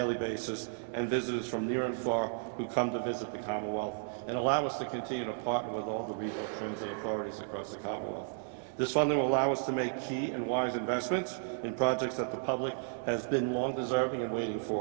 basis and visitors from near and far who come to visit the Commonwealth, and allow us to continue to partner with all the regional transit authorities across the Commonwealth. This funding will allow us to make key and wise investments in projects that the public has been long deserving and waiting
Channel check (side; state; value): left; silent; 55 dB below the other